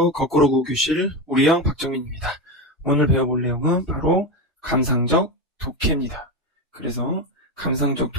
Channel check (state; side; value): normal; both; correlation 0.16